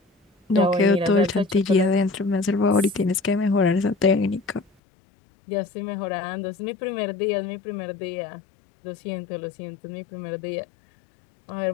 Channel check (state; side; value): drops out; right; at 4.7 s